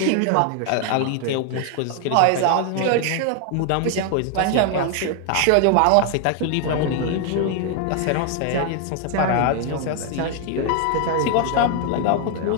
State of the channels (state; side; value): different; both; correlation 0.00